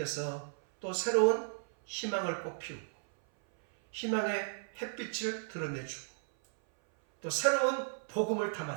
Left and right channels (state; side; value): silent; left; 55 dB below the other